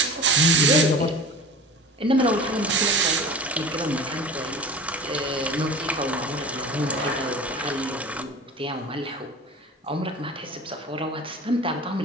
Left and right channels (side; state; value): both; normal; correlation 0.37